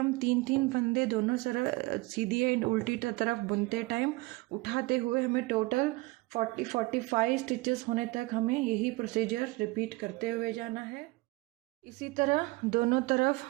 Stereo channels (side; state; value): left; quieter; 22.6 dB